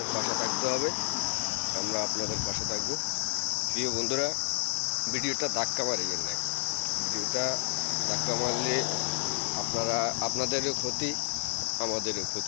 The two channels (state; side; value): silent; right; digital silence